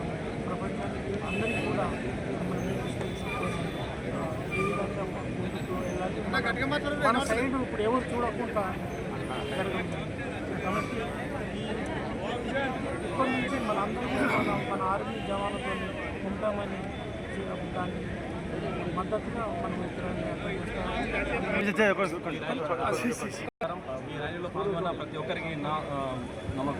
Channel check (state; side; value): identical; both; correlation 1.00